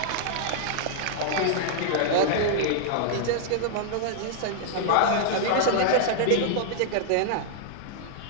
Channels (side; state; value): both; different; correlation -0.01